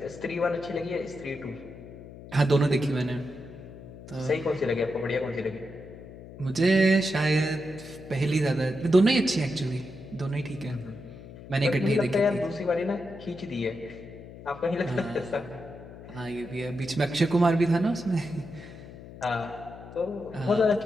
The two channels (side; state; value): left; noise; hum, 15 dB below the sound